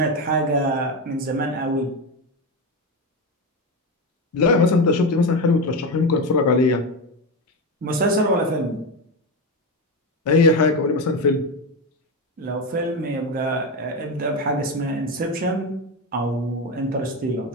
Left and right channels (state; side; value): normal; both; correlation 0.16